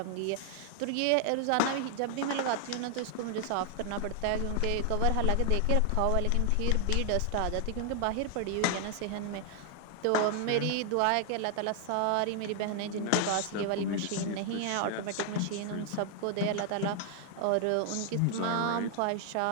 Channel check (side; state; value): both; different; correlation 0.00